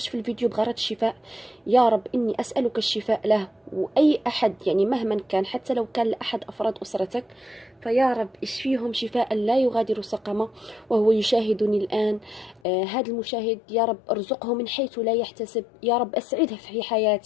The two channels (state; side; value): drops out; right; at 12.6 s